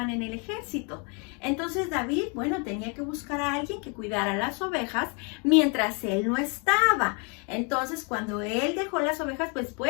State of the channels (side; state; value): right; quieter; 35.0 dB